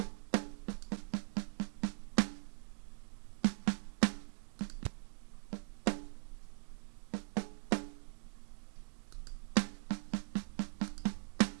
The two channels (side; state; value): left; silent; digital silence